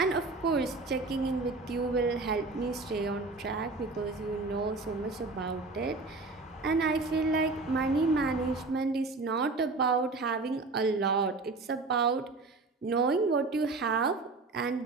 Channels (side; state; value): left; quieter; 3.6 dB